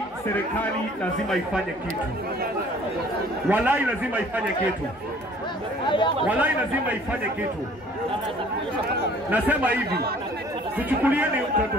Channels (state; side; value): normal; both; correlation 0.54